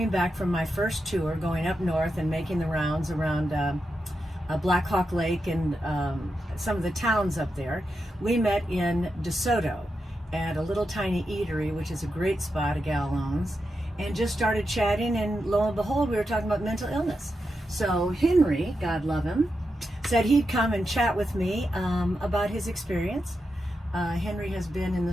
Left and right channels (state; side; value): normal; both; correlation 0.87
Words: back from my first tour, going up north and making the rounds around Black Hawk Lake and some of the towns up there. We met in DeSoto at a little tiny eatery, which is a great spot a gal owns, and just started chatting, and lo and behold, we were talking about mental illness. So Henry, God love him, said he'd come and chat with me about his experience. Henry has been in the